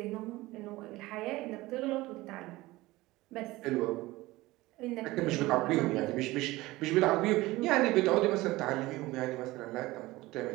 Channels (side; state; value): left; quieter; 19.3 dB